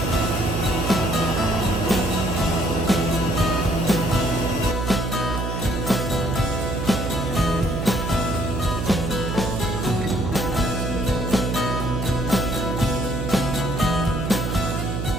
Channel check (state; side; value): noise; right; hum, 3 dB below the sound